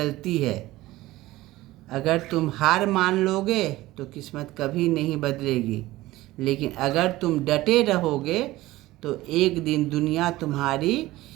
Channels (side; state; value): left; quieter; 17.6 dB